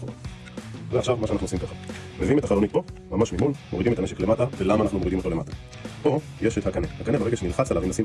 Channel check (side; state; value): both; identical; correlation 1.00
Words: ועכשיו מה שאנחנו עושים ככה. מביאים את החלונית פה, ממש ממול, מורידים את הנשק למטה, ולמה אנחנו מורידים אותו למטה? פה יש את הקנה. הקנה ברגע שנלחץ עליו, אם נשים